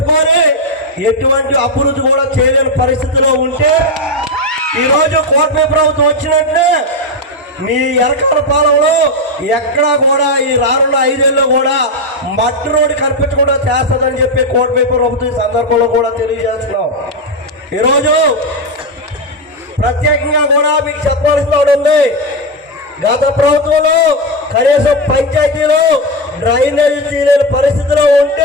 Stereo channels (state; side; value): normal; both; correlation 0.07